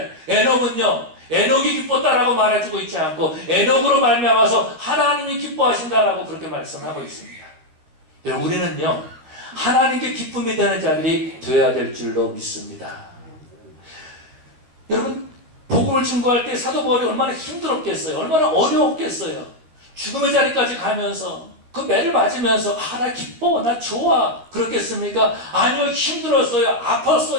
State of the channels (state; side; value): late; left; 13 ms